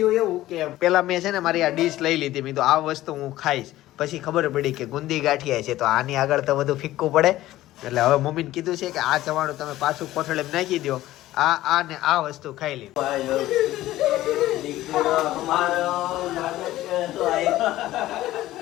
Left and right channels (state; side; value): quieter; right; 15.4 dB